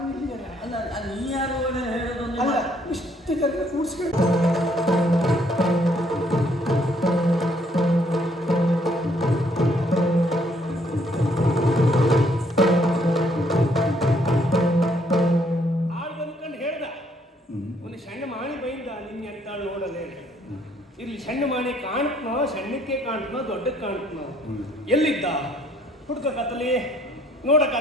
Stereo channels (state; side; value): normal; both; correlation 0.66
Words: ಇಲ್ಲಿಯಲ್ಲ ಅಲ್ಲ ನೀ ಯಾರು ಹೇಳೋದೊಂದು ಅಲ್ಲ ಇಷ್ಟು ಜನ ಕೂಡಿಸ್ಕೊಂಡು ಆಳು ಬಂದ್ಕೊಂಡು ಹೇಳ್ದ ಒಂದು ಸಣ್ಣ ಮಾಣಿ ಬೈಂದ ನಿನ್ನ ಎಂತಾಳು ನೋಡಲೇ ಇಲ್ಲಿ ಸಣ್ಣ ಮಾಣಿ ಕಾಣ್ತನೋ ಸಣ್ಣಕ್ಕೆ ಕಾಣ್ತನೋ ದೊಡ್ಡಕ್ಕೆ ಕಾಣ್ತನೋ ಎಲ್ಲಿದ್ದ ಹುಡ್ಕ ಕತ್ತಲಿ ನೋಡ